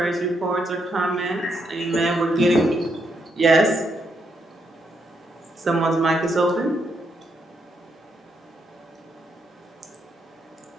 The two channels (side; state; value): both; normal; correlation 0.78